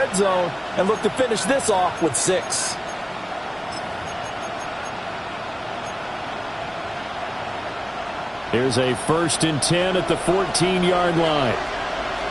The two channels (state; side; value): identical; both; correlation 1.00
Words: zone and look to finish this off with 6. Here's a 1st and 10 at the 14-yard line.